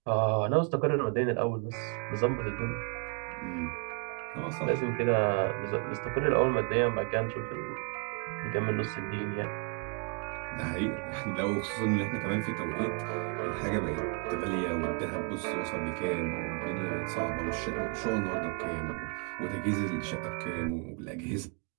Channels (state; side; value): quieter; left; 38.5 dB